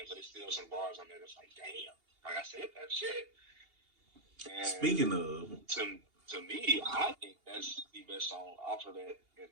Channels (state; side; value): late; left; 2.8 ms